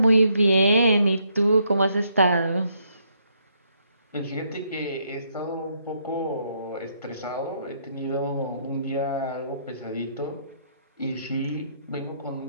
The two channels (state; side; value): inverted; both; correlation -0.74